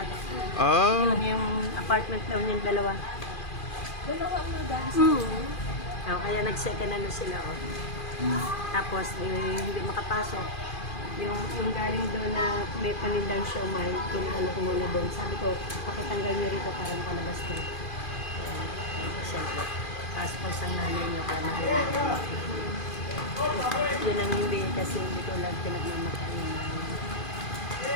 Ah, Yung apartment daw niyang dalawa. Dalawa mo guys? Kaya nag-second ano sila. Tapos hindi makapasok. Yung galing doon na may panindang siomay, pinaano ko muna doon. Sabi ko, pakitanggal niyo rito para makalabas ko. Siyempre. Tapos ang nanay niyo ka na yun ang hindi kasi hindi ko lang pinagmamakain na.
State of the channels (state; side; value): late; right; 2.4 ms